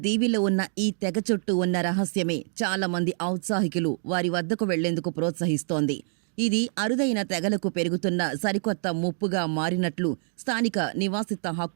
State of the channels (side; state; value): left; silent; digital silence